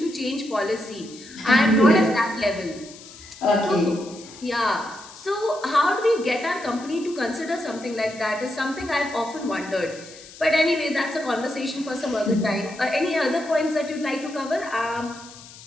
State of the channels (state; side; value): noise; left; hiss, 18 dB below the sound